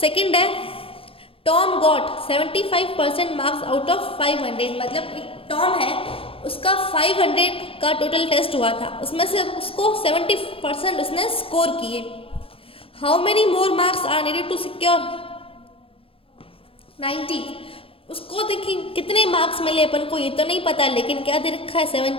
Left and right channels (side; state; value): right; late; 0.27 ms